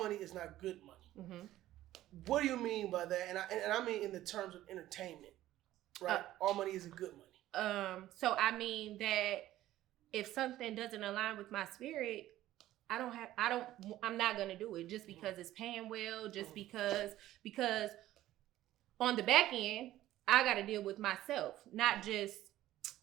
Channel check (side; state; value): left; quieter; 14.4 dB